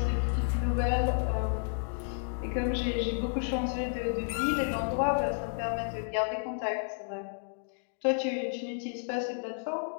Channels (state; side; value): silent; right; digital silence